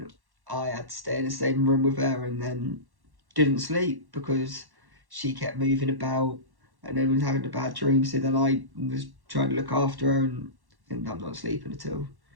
I had to stay in the same room with her, and then didn't sleep because she kept moving about and then was having a bad dream. So then I was trying to look after her, and I'm not sleeping at all.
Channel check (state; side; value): late; left; 1.1 ms